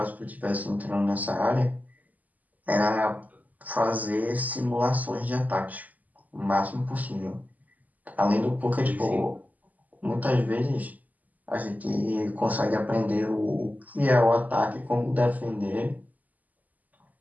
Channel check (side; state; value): left; late; 0.079 ms